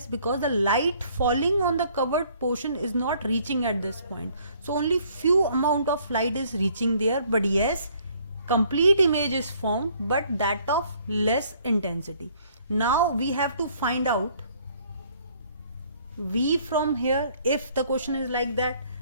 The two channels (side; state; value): both; inverted; correlation -0.61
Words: Because the light falling on the covered portion is not reaching at this point. So only few amount of light is reaching there. But yes, complete image is formed, but that of less intensity. Now we have to find out V from here. If the question is like that,